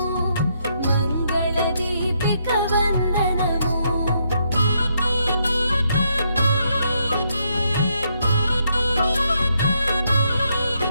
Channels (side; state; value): both; inverted; correlation -0.76